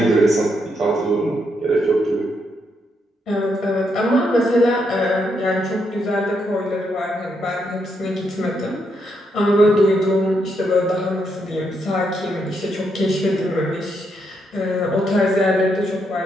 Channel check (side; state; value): both; normal; correlation 0.78